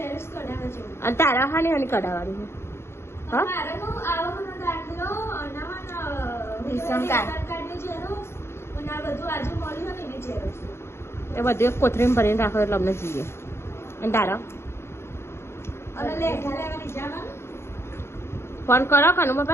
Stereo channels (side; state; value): right; late; 0.12 ms